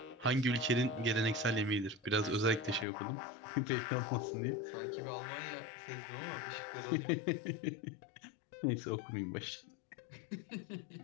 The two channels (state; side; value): drops out; right; at 2.9 s